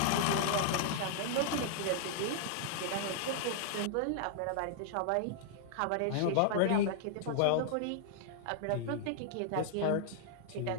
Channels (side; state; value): both; different; correlation -0.01